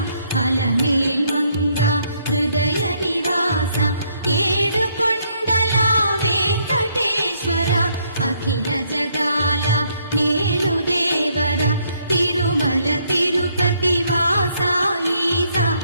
అలమేల్ మంగ హృదయ నివాస ఏడుకొండల వెంకటేశ్వర అఖిల జగాల నేలు దేవర తిరుమల తిరుపతి వాస ఈస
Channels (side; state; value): both; inverted; correlation -0.70